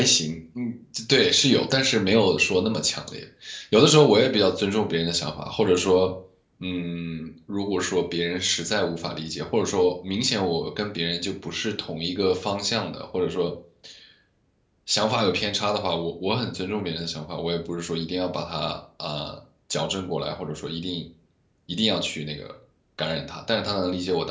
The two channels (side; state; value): both; identical; correlation 1.00